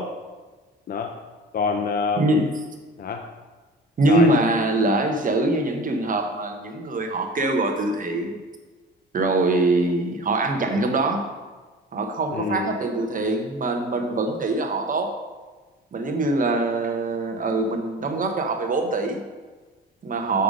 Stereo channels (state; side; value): normal; both; correlation 0.37